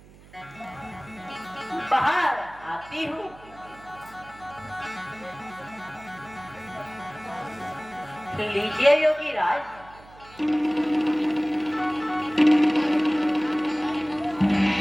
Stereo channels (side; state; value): right; noise; hum, 22 dB below the sound